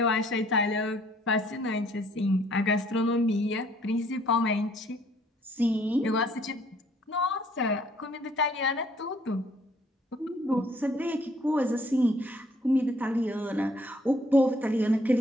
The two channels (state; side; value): normal; both; correlation 0.62